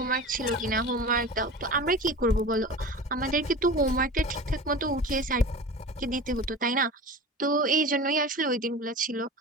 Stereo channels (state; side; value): normal; both; correlation 0.34